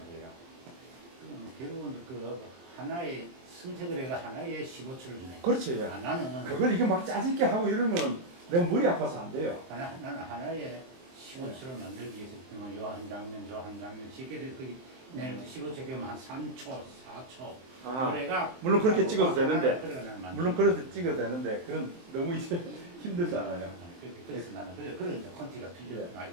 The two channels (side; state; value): left; late; 23 ms